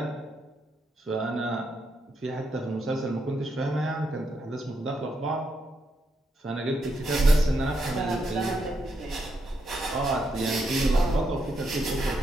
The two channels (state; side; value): normal; both; correlation 0.80